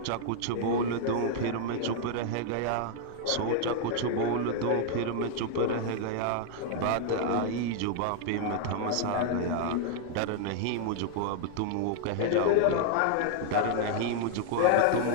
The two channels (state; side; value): different; both; correlation 0.00